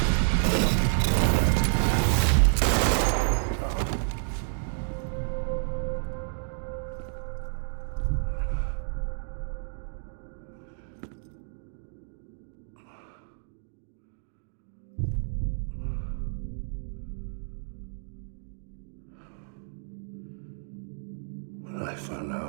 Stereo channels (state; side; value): silent; left; digital silence